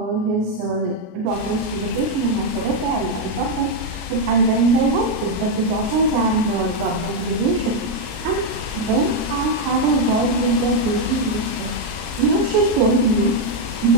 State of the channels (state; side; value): late; left; 33 ms